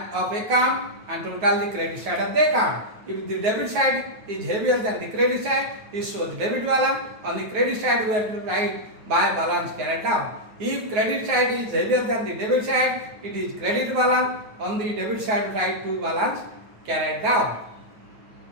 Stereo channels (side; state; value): left; late; 9.5 ms